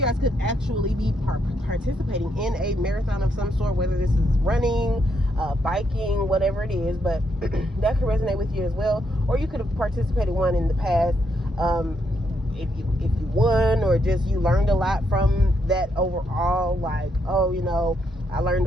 guys could actually be participating in a marathon of some sort, whether this is running, biking, whatever it is, but that could resonate with you as well. Or you could have participated one in the past. If you won, or just you learned a lot from that overall, like, oh, you know, I learned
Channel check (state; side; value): normal; both; correlation 0.77